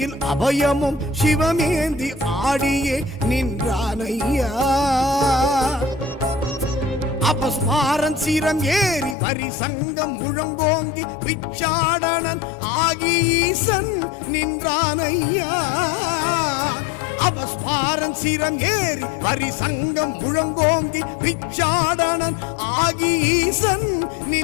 அபயமும் சிவமேந்தி ஆடியே நின்றானையா. அபஸ்மாரன் சிரம் ஏறி வரி சங்கம் முழங்கோங்கி பிச்சாடனன் ஆகி ஈசன் நின்றானையா. அபஸ்மாரன் சிரம் ஏறி வரி சங்கம் முழங்கோங்கி பிச்சாடனன் ஆகி ஈசன்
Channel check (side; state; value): right; drops out; at 9.2 s